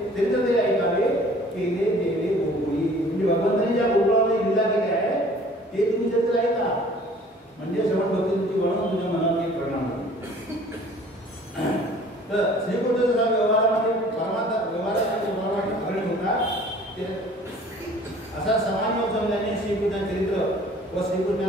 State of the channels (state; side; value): normal; both; correlation 0.51